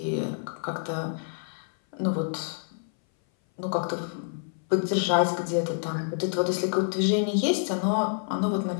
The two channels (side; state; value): right; silent; 58 dB below the other